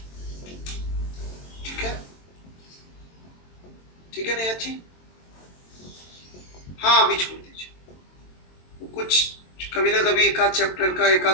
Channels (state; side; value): late; right; 22 ms